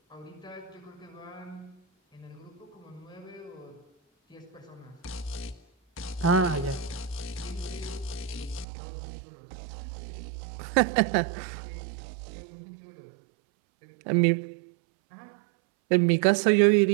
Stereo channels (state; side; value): drops out; left; at 8.7 s